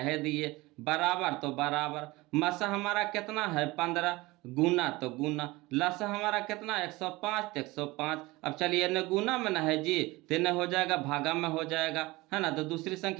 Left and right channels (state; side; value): quieter; left; 21.3 dB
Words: दिए, बराबर तो बराबर। मासा हमारा कितना है 15, गुना तो गुना, लसा हमारा कितना 105, तो 105। अब चलिए न गुना में ना है जी, तो न हो जाएगा भागा में हो जाएगा, है ना। तो दूसरी